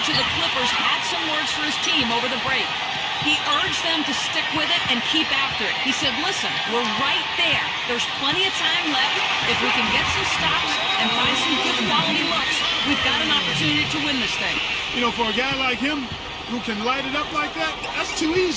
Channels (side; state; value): both; identical; correlation 1.00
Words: of the Clippers had some words for his team over the break. He urged them to stick with it and keep after it. He said, listen, we're right there. There's plenty of time left. If we can get some stops and find some good quality looks, we've got an opportunity to win this thing. You know, for a guy like him who can light it up like that, that's too